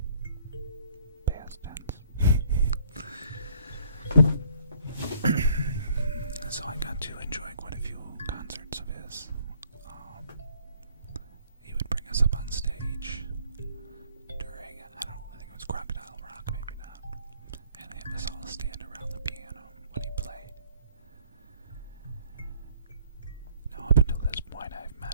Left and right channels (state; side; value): inverted; both; correlation -0.62